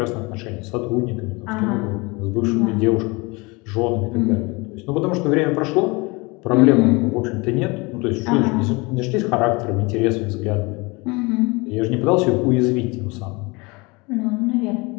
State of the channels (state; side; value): quieter; right; 26.2 dB